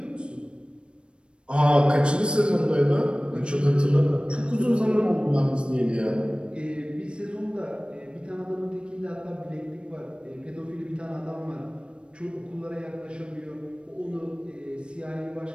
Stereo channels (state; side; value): late; left; 0.056 ms